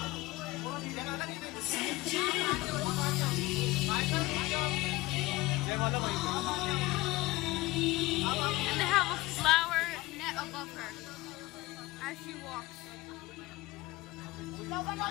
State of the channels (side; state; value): right; quieter; 20.3 dB